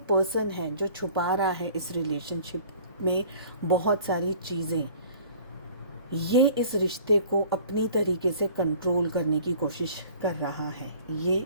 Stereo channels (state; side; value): inverted; both; correlation -0.50